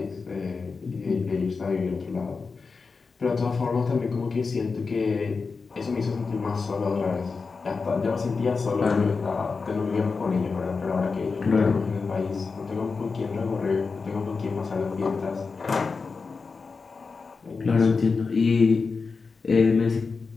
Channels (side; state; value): right; quieter; 4.6 dB